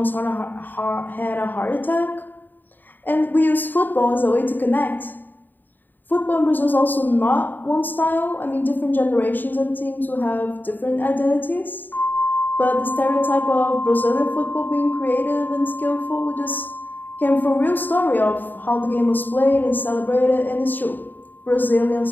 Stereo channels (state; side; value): late; right; 0.090 ms